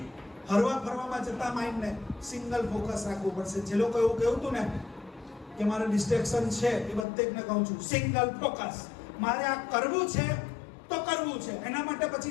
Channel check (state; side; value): drops out; right; at 7.1 s